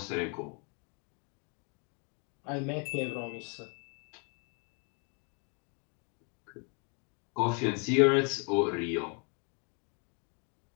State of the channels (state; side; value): quieter; right; 35.7 dB